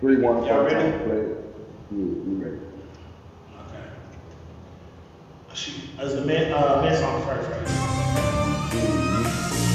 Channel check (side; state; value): both; identical; correlation 1.00